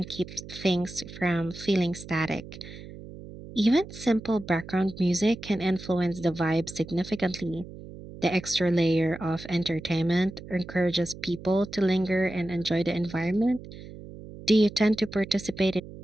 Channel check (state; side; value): noise; right; hum, 15 dB below the sound